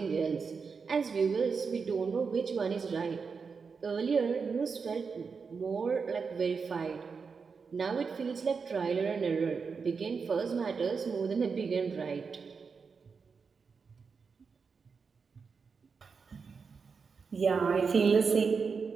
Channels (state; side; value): quieter; left; 5.3 dB